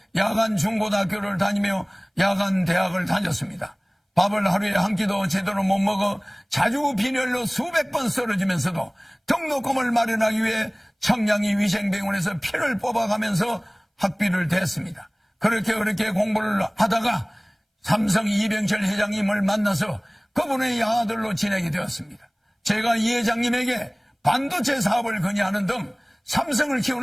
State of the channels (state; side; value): identical; both; correlation 1.00